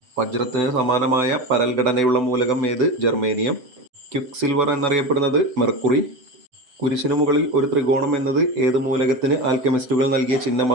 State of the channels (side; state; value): left; late; 7.9 ms